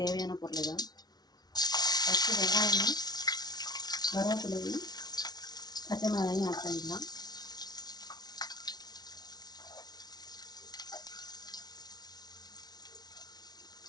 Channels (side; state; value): right; late; 0.19 ms